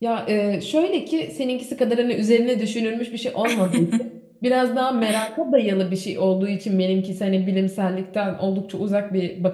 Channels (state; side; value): identical; both; correlation 1.00